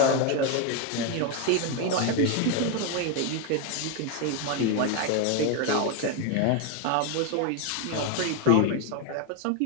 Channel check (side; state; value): both; different; correlation 0.01